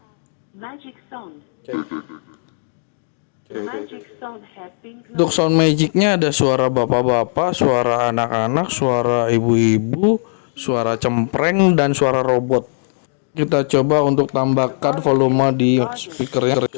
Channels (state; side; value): silent; right; digital silence